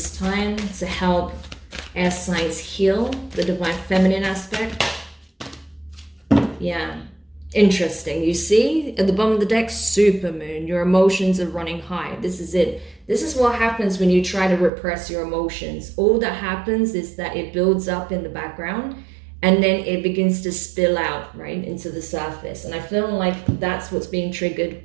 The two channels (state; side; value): drops out; left; at 14.7 s